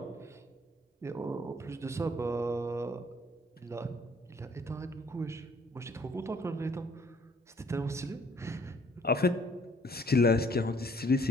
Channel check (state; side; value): normal; both; correlation 0.61